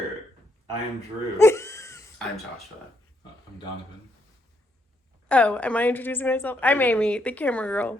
I am Drew. I'm Joshua. I'm Donovan. Oh, am I introducing myself? I'm Amy, the camera girl.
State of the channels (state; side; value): normal; both; correlation 0.75